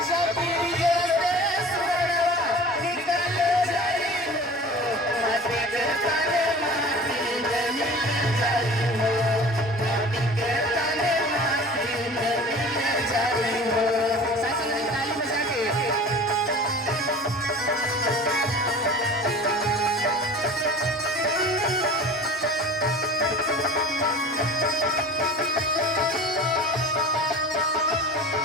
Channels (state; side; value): normal; both; correlation 0.40